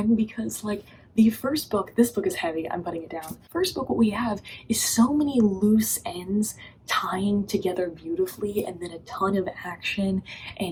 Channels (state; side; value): identical; both; correlation 1.00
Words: because like the first book, this book is heavy, I'm putting it down. First book, what we have is so many loose ends tying together beautifully, and then a ton of action